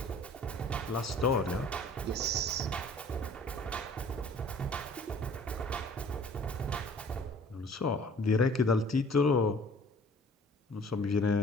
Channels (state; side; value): normal; both; correlation 0.51